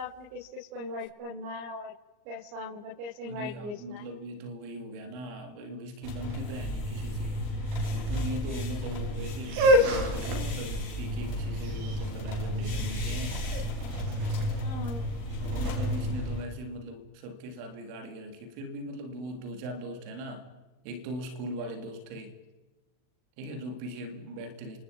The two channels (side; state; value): left; late; 39 ms